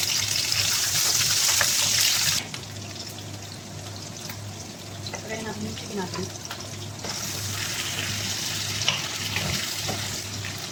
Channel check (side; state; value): both; identical; correlation 1.00